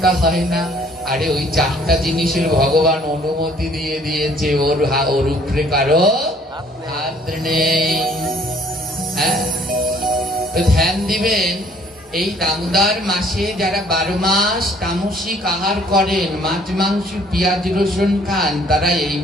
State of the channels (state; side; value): normal; both; correlation 0.59